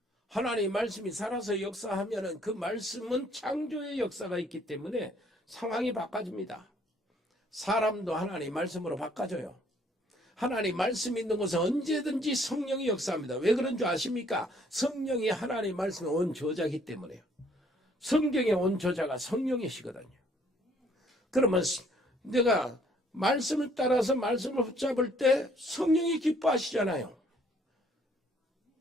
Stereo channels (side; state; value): both; normal; correlation 0.63